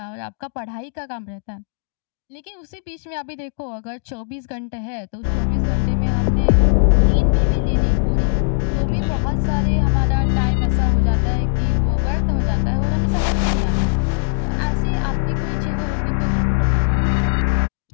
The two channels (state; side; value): silent; right; digital silence